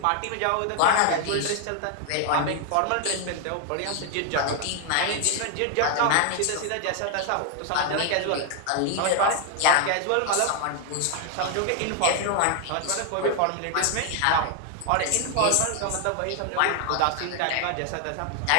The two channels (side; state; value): both; different; correlation 0.00